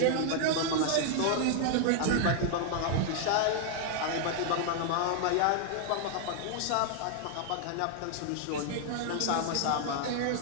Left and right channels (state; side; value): different; both; correlation 0.00